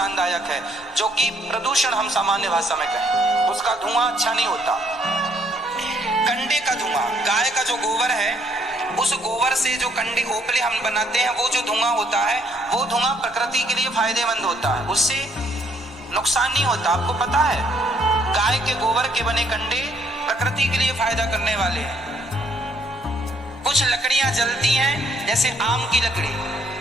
है, जो कि प्रदूषण हम सामान्य भाषा में कहें। उसका धुआं अच्छा नहीं होता। कंडे का धुआं, गाय का जो गोबर है, उस गोबर से जो कंडे ओपले हम बनाते हैं, वो जो धुआं होता है, वो धुआं प्रकृति के लिए फायदेमंद होता है, उससे नुकसान नहीं होता। आपको पता है, गाय के गोबर के बने कंडे प्रकृति के लिए फायदा करने वाले हैं। कुछ लकड़ियां जलती हैं, जैसे आम की लकड़ी,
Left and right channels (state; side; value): normal; both; correlation 0.67